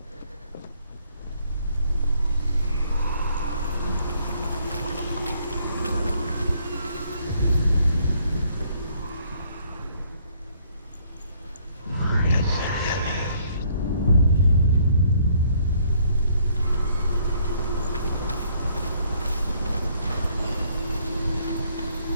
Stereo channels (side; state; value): both; inverted; correlation -0.65